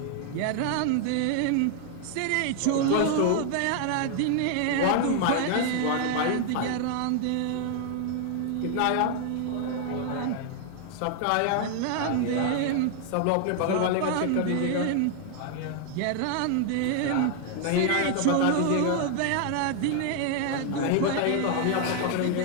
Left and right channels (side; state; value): both; different; correlation 0.00